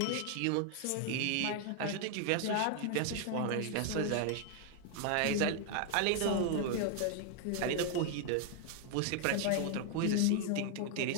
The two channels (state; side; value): different; both; correlation 0.00